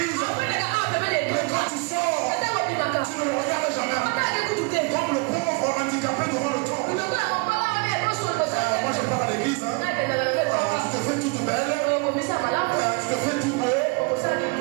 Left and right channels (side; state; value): left; quieter; 30.5 dB